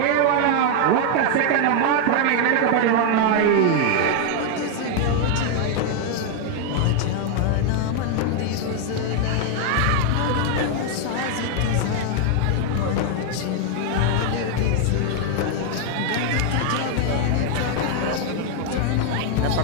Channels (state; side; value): different; both; correlation 0.00